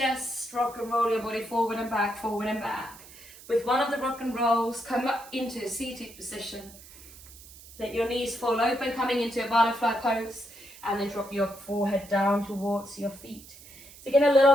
rock and roll your body forward and back, forward and back. With one of the rock and rolls, come up into a seated position. Let your knees fall open, coming into a butterfly pose, and then drop your forehead down towards your feet. So get a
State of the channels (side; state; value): right; noise; hiss, 19 dB below the sound